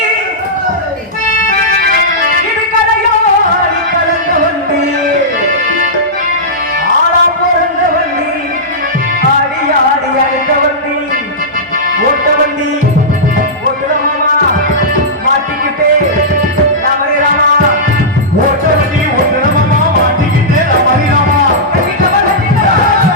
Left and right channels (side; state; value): both; normal; correlation -0.13